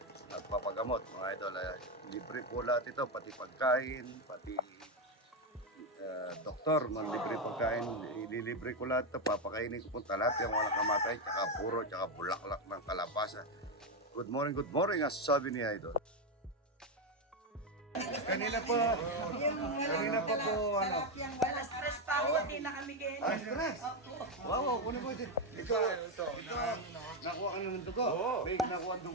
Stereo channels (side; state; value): both; normal; correlation 0.07